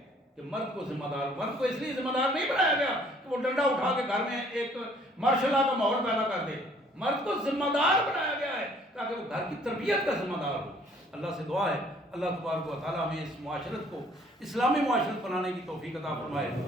کہ مرد کو ذمہ دار, مرد کو اس لیے ذمہ دار نہیں بنایا گیا کہ وہ ڈنڈا اٹھا کے گھر میں ایک مارشل لا کا ماحول پیدا کر دے. مرد کو ذمہ دار بنایا گیا ہے تاکہ وہ گھر کی تربیت کا ذمہ دار ہو. اللہ سے دعا ہے اللہ تبارک و تعالیٰ ہمیں اس معاشرت کو اسلامی معاشرت بنانے کی توفیق عطا فرمائے.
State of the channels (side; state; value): both; normal; correlation 0.59